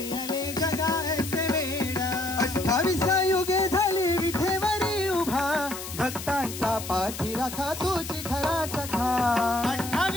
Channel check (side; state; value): left; noise; hiss, 9 dB below the sound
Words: जगायचे वेड 28 युगे झाली विठेवरी उभा भक्तांचा पाठी राखा तुझी खरा सखा